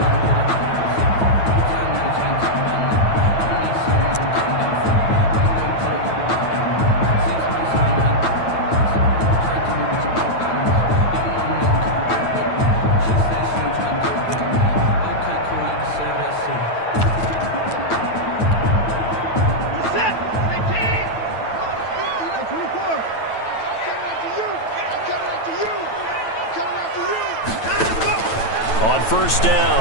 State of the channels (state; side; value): late; right; 9.1 ms